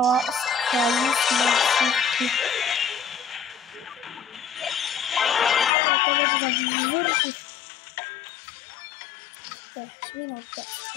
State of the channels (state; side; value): drops out; right; at 5.7 s